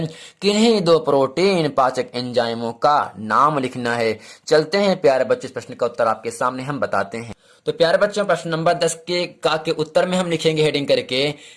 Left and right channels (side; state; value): both; identical; correlation 1.00